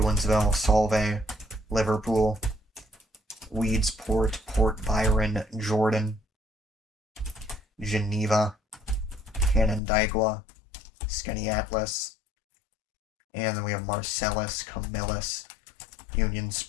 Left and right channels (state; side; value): drops out; right; at 9.8 s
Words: Solvay, Liverpool, Weedsport, Port Byron, Jordan, Geneva, Canandaigua, Skaneateles, and then we have Marcellus, Camillus, Union